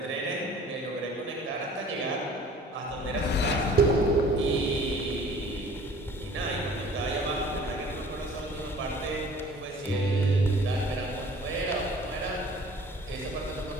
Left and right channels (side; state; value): both; normal; correlation 0.49